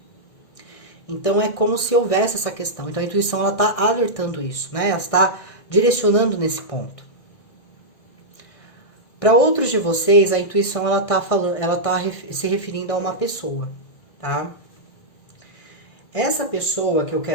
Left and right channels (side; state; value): right; late; 1.6 ms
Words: Então é como se houvesse essa questão. Então a intuição ela está alertando isso, né? Ela está direcionando nesse ponto. Para outros de vocês, a intuição ela está se referindo a uma pessoa, tá? Essa pessoa que eu